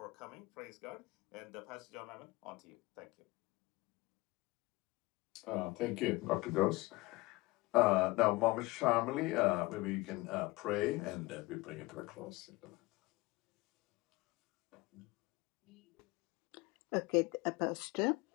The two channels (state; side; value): quieter; right; 21.7 dB